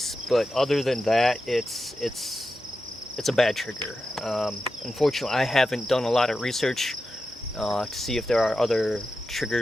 but other than that, it's a bad trigger. Unfortunately, I haven't done a lot of research to see if there are other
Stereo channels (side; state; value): both; normal; correlation 0.90